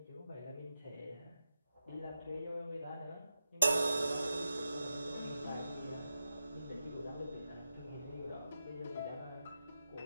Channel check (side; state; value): both; inverted; correlation -0.89